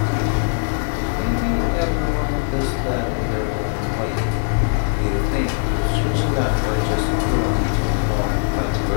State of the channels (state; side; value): silent; right; digital silence